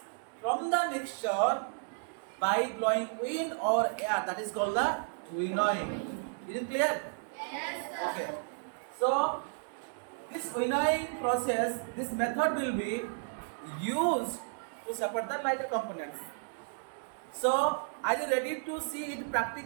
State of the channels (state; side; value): silent; left; digital silence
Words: from the mixture by blowing wind or air. That is called the winnowing. Is it clear? Yes, sir. Okay. So this winnowing process, this method will be used to separate the lighter components. So are you ready to see it